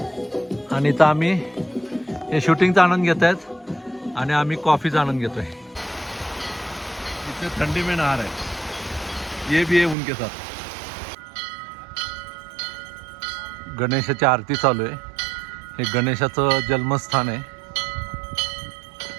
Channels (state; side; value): drops out; left; at 10.0 s